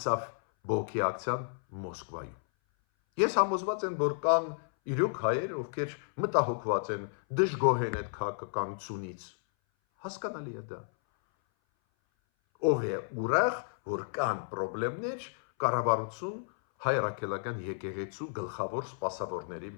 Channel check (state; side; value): silent; right; 56 dB below the other